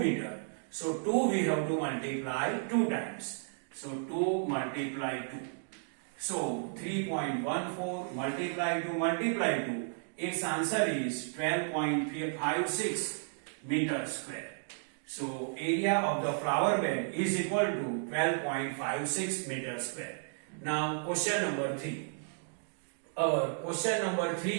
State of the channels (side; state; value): left; silent; digital silence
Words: So 2 we have to multiply 2 times. So 2 multiply 2. So 3.14 multiply 2, its answer is 12.56 meter square. So area of the flower bed is equal to 12.56 meter square. Now question number 3. Our question number 3